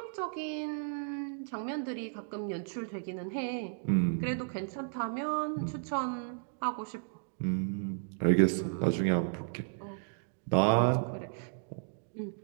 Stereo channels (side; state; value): left; silent; digital silence